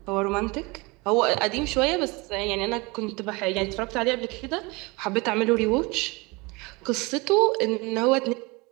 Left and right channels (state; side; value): quieter; left; 25.8 dB